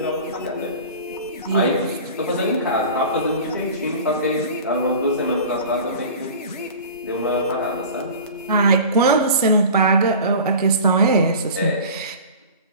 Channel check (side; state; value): both; inverted; correlation -0.38